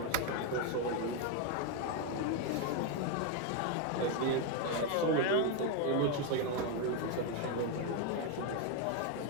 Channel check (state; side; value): different; both; correlation 0.02